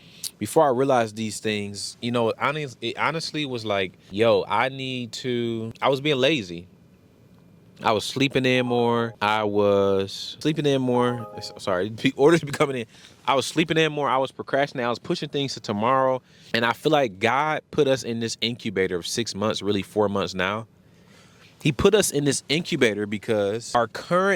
Before I realized these things, you know, it honestly was like, yo, I was being lazy. I was sleeping in more. Sorry, orders be coming in. I was sleeping in more. I was procrastinating. I was pushing things to tomorrow. And I feel like God put us in this incubator of 6 months, really 4 months now. He put us in this incubator because our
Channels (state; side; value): identical; both; correlation 1.00